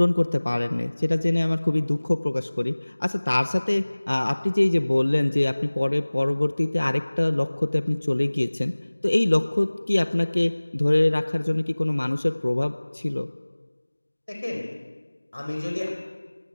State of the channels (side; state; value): both; inverted; correlation -1.00